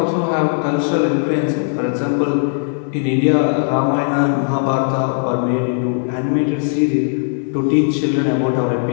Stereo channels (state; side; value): silent; right; digital silence